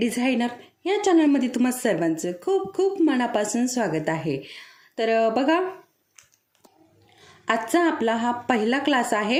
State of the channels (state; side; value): identical; both; correlation 1.00